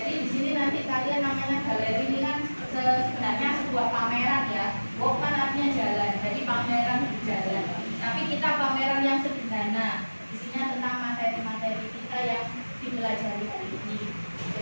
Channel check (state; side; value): inverted; both; correlation -1.00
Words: di sini nanti kalian namanya galeri ini kan sebenarnya sebuah pameran ya. Walk kan artinya jalan. Jadi pameran jalan. Tapi kita pameran yang sederhana. Isinya tentang materi-materi kita yang dipelajari hari ini.